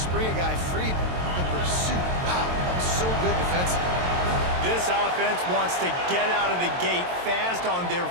a guy free. But the pursuit, wow, that was so good defensively. This offense wants to get out of the gate fast on their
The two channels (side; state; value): left; late; 22 ms